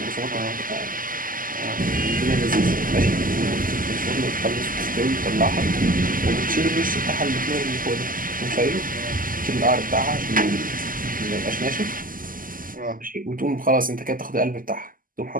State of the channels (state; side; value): late; left; 0.41 ms